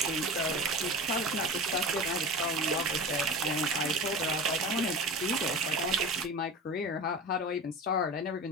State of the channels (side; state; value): both; normal; correlation 0.32